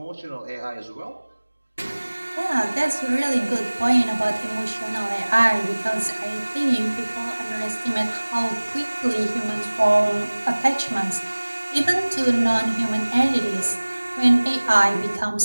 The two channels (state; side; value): inverted; both; correlation -1.00